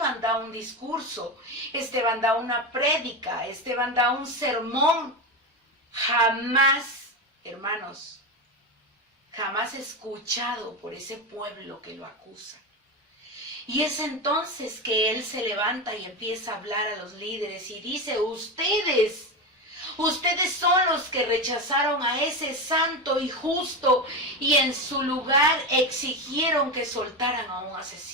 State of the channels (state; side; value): normal; both; correlation 0.17